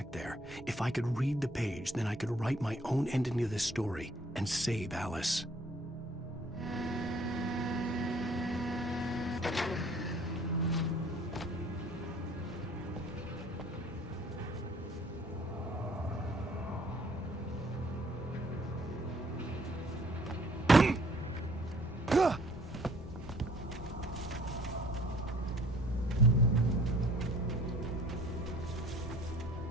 there, if I could read the page, then I could write my own ending to this story and save Alice.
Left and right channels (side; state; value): both; normal; correlation 0.57